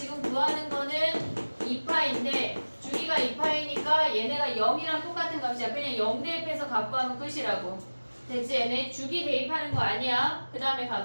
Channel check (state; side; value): inverted; both; correlation -1.00